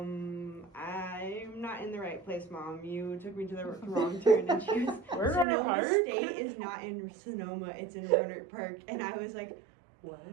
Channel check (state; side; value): drops out; left; at 5.5 s